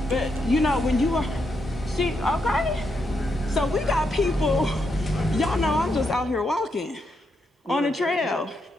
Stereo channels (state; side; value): normal; both; correlation 0.81